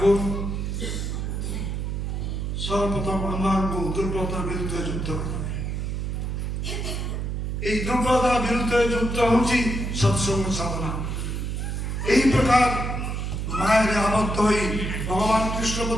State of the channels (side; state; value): right; noise; hum, 2 dB below the sound